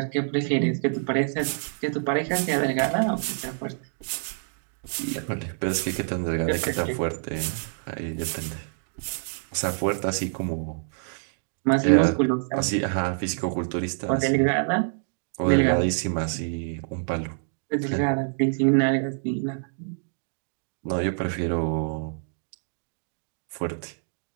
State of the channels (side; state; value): left; silent; digital silence